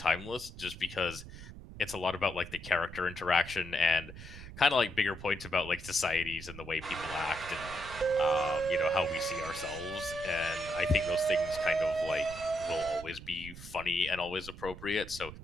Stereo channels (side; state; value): right; noise; rumble, 13 dB below the sound